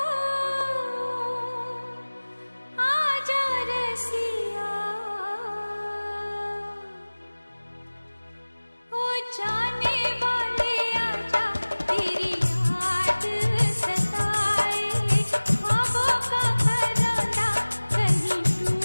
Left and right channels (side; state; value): both; inverted; correlation -1.00